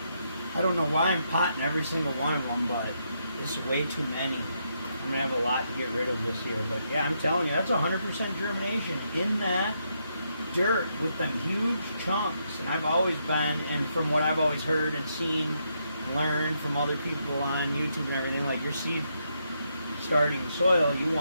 I don't know why I'm potting every single one of them, but it's way too many. I'm going to have a lot to get rid of this year. But yeah, I'm telling you, that's 100% germination in that dirt with them huge chunks. And I've always been, and from what I've always heard and seen and learned from other people on YouTube and everything, like your seed starting soil, you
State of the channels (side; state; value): both; inverted; correlation -0.79